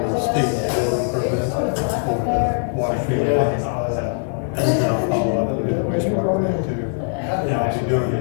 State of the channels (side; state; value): right; silent; 58 dB below the other